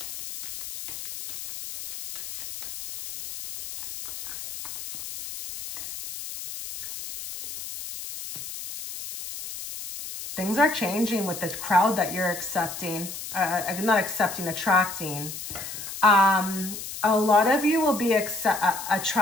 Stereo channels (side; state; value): left; noise; hiss, 9 dB below the sound